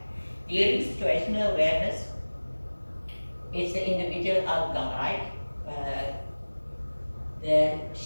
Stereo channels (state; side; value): inverted; both; correlation -1.00